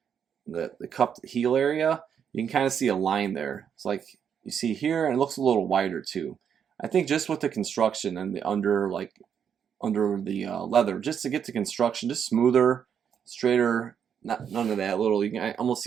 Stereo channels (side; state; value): left; quieter; 7.9 dB